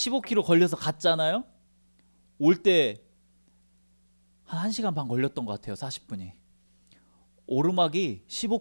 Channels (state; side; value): inverted; both; correlation -1.00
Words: 걸려서 갔잖아요. 올 때 한 1시간 반 걸렸던 것 같아요. 40분이. 오르막이